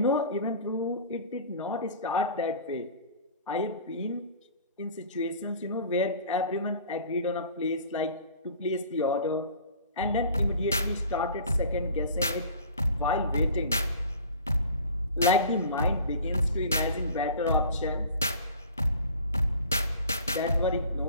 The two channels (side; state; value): both; inverted; correlation -0.44